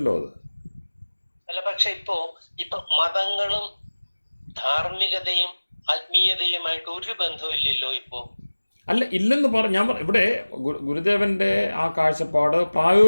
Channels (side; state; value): both; inverted; correlation -1.00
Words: അത്. അല്ല, പക്ഷെ ഇപ്പൊ മതങ്ങളും ധാർമ്മികതയും ആത്മീയതയുമായിട്ട് ഒരു ബന്ധമില്ലല്ലോ ഇപ്പോൾ. അല്ല, ഇല്ലെന്ന് ഞാൻ ഇവിടെ ഗുരുദേവൻ്റെ ആ കാഴ്ചപ്പാട്